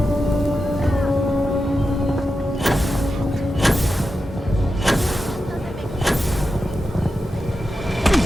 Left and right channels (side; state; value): both; normal; correlation 0.90